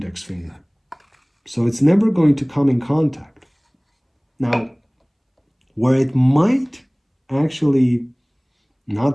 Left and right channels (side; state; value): both; identical; correlation 1.00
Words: finger. So it's never going to come in contact. Now, where it might actually